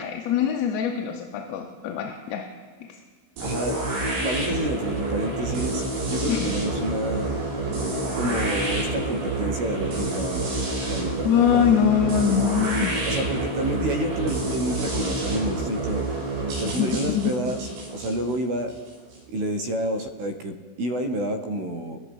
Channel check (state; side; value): late; left; 16 ms